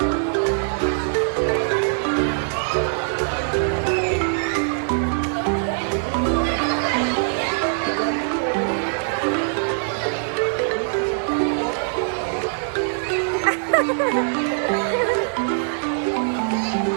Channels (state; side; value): silent; left; 62 dB below the other